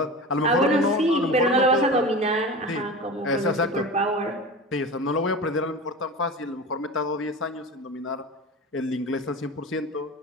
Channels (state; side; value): normal; both; correlation 0.31